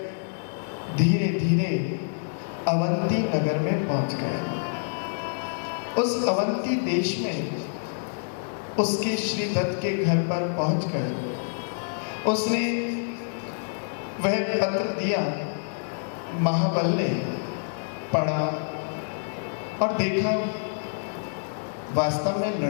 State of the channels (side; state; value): right; silent; digital silence